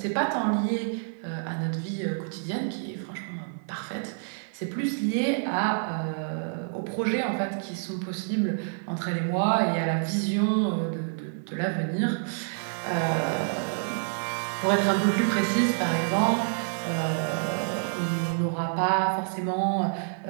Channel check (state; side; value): silent; left; digital silence